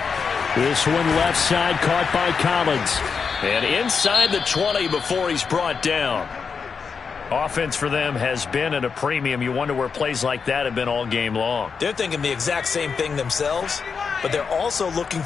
This one left side caught by Collins. And inside the 20 before he's brought down. Offense for them has been at a premium. You wonder where plays like that have been all game long. They're thinking the exact same thing themselves, but they're also looking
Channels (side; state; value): right; quieter; 5.7 dB